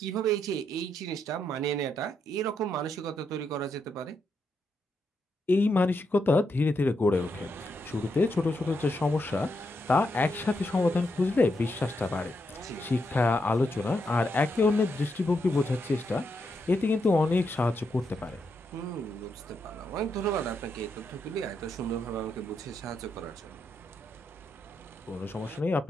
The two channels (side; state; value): both; normal; correlation 0.81